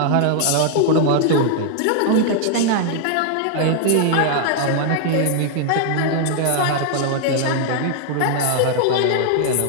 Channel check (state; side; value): different; both; correlation 0.00